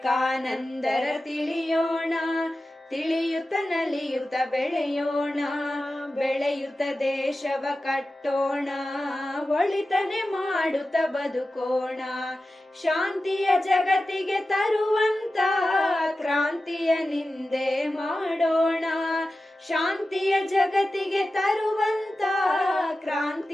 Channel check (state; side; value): normal; both; correlation 0.94